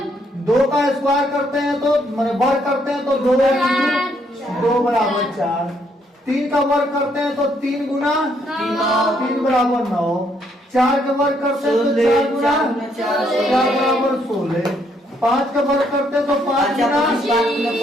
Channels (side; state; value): both; normal; correlation 0.71